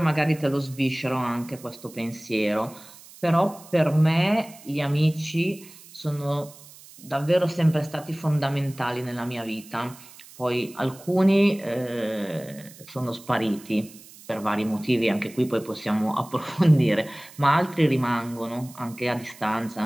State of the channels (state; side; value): noise; right; hiss, 20 dB below the sound